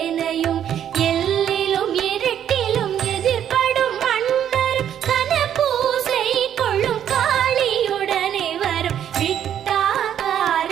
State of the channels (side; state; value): left; quieter; 9.8 dB